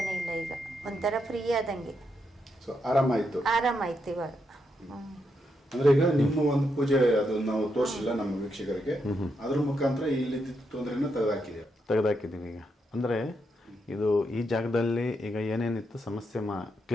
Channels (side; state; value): both; normal; correlation 0.81